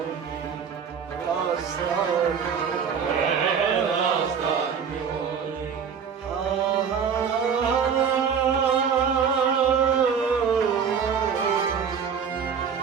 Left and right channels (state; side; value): quieter; left; 6.8 dB